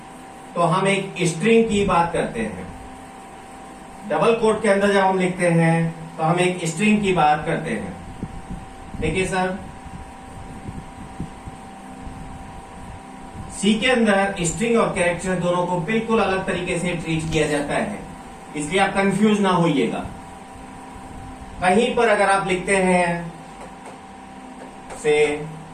तो हम एक स्ट्रिंग की बात करते हैं। डबल कोट के अंदर जब हम लिखते हैं तो हम एक स्ट्रिंग की बात करते हैं। देखिए सर, सी के अंदर स्ट्रिंग और कैरेक्टर दोनों को बिल्कुल अलग तरीके से ट्रीट किया जाता है, इसलिए आप कंफ्यूज ना होइएगा। कहीं पर अगर आप लिखते हैं से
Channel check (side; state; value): both; identical; correlation 1.00